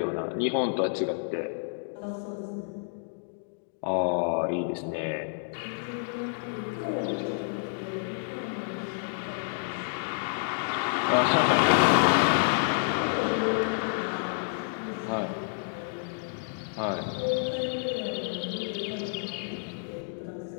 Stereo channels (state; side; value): silent; right; digital silence